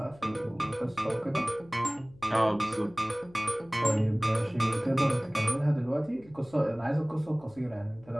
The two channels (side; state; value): left; noise; hum, 25 dB below the sound